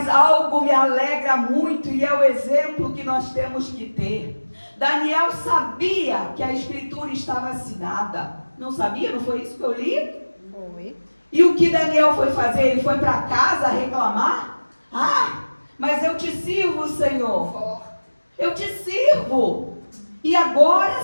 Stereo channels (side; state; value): both; inverted; correlation -1.00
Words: algo me alegra muito e é o exemplo que nós temos que ter. Daniel sabia que a escritura estava assinada. Não sabia? Não foi isso que eu li? Foi. E o que Daniel foi fazer? Ele foi para casa reclamar? Mas eu te sirvo, Senhor. Eu te sirvo. E